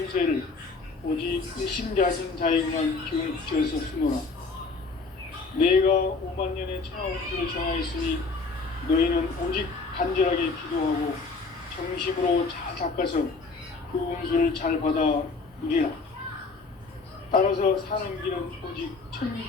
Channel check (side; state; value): right; quieter; 4.1 dB